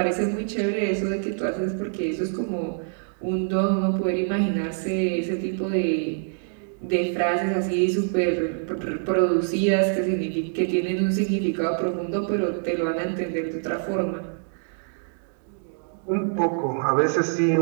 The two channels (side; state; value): left; silent; digital silence